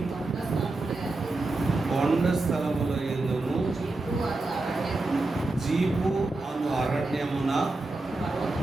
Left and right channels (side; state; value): left; quieter; 3.1 dB